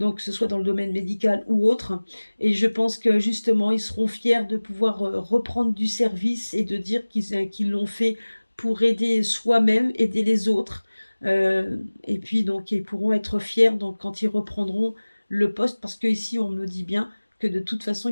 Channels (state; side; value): inverted; both; correlation -1.00